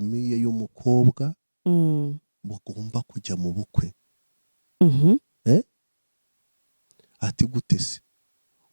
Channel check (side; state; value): both; inverted; correlation -1.00